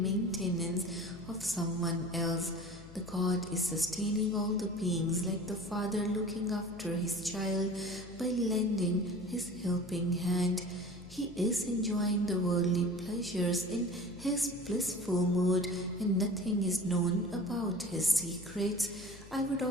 maintenance of someone else. The God is sustaining all the beings like the father looking after his child by lending his helping hand. He is enjoying the worldly pleasures in his blissful mood, and nothing is known about his secrets. I would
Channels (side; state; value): left; noise; hum, 19 dB below the sound